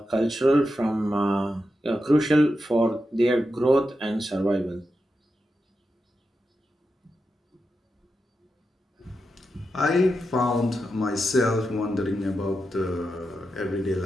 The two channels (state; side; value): normal; both; correlation 0.88